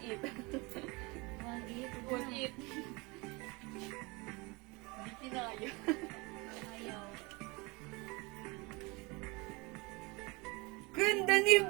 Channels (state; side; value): quieter; left; 26.2 dB